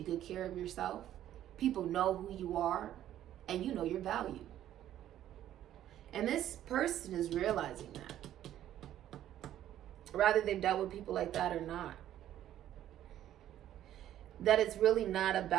good care of yourself. People know who you are, and you know your value. And this person is realizing that. Whether they've dealt with people like that or not. That it's really not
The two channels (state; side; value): quieter; left; 12.0 dB